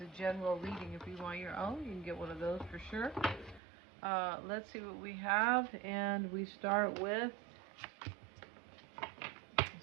general reading. If you want your own, you can get one of those for sure. Let's see what we have, and we start with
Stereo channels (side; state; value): left; drops out; at 3.6 s